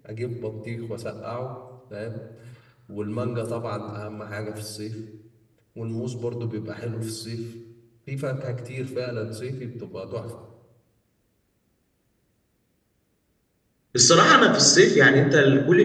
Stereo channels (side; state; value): both; identical; correlation 1.00